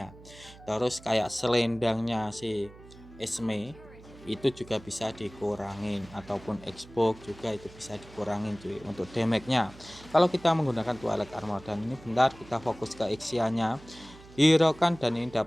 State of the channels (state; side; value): noise; right; hum, 20 dB below the sound